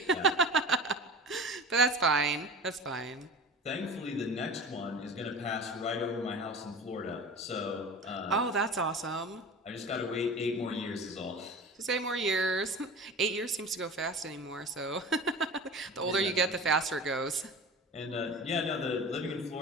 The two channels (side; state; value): both; normal; correlation 0.34